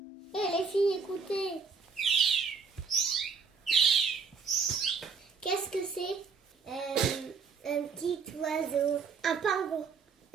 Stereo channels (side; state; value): left; quieter; 5.3 dB